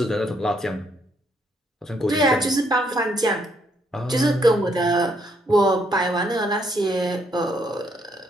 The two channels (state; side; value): normal; both; correlation 0.72